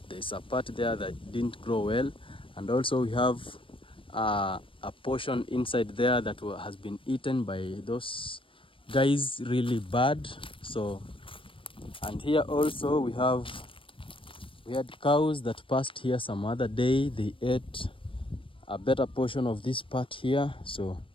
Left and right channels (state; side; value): late; right; 0.25 ms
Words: there's a part there that didn't grow well, and also we have a portion inside there that has been eaten by those guys really bad. So, and here also we had cows that passed here some other day. They ate a better portion of this part here. So